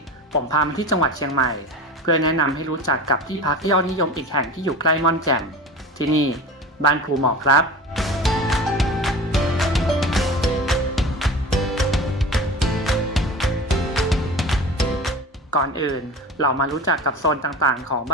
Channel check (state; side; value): normal; both; correlation 0.34